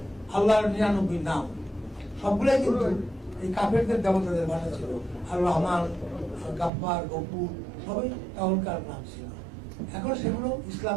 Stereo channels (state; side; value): drops out; left; at 6.7 s